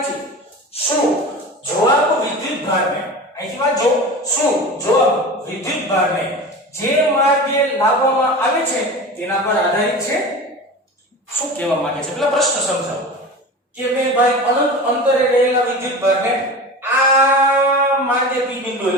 શું જવાબ વિદ્યુતભારને, અહીંથી વાંચો, શું જવાબ વિદ્યુતભારને જે માર્ગે લાવવામાં આવે છે તેના પર આધારિત છે? શું કહેવા માંગે છે પેલા પ્રશ્ન સમજાવો કે ભાઈ અનંત અંતરે રહેલા વિદ્યુતભારને આ માર્ગે p બિંદુએ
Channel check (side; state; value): both; normal; correlation 0.32